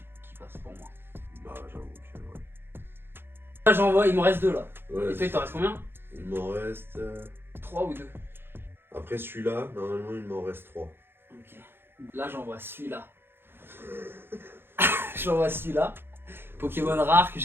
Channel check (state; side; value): late; left; 0.11 ms